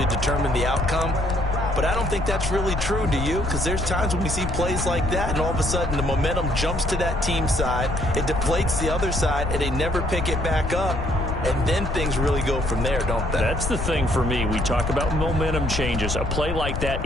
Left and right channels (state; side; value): noise; left; rumble, 3 dB below the sound